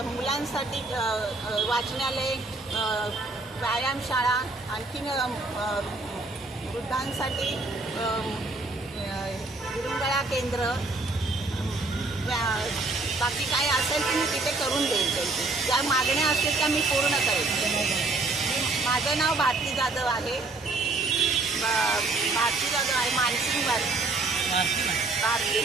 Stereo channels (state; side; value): quieter; left; 3.4 dB